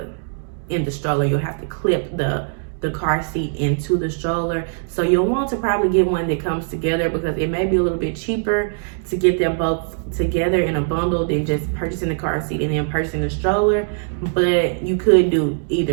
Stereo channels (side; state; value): left; silent; 65 dB below the other